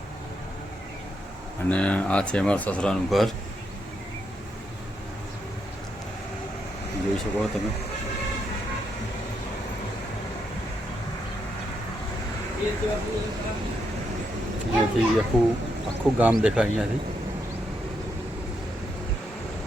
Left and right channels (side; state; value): both; normal; correlation 0.80